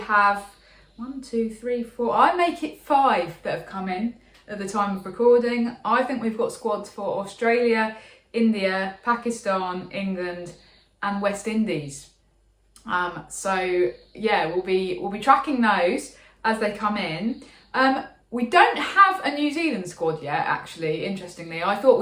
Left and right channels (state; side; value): identical; both; correlation 1.00